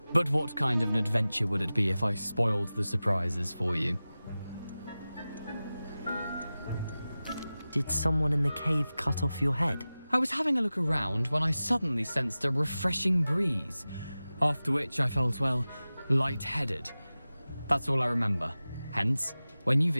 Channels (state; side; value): inverted; both; correlation -0.96